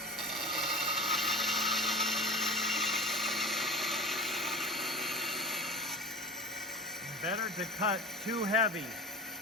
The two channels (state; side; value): normal; both; correlation 0.33